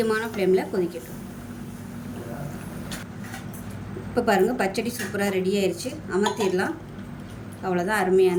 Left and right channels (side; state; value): both; identical; correlation 1.00